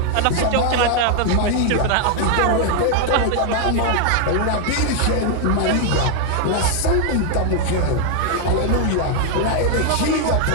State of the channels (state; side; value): different; both; correlation 0.00